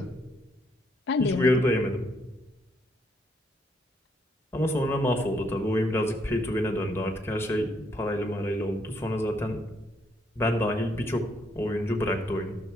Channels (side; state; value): both; normal; correlation 0.73